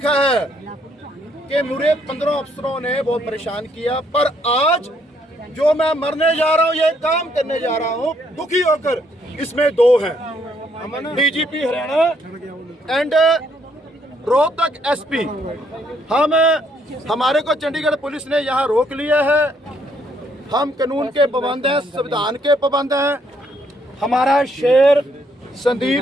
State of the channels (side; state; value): both; normal; correlation 0.70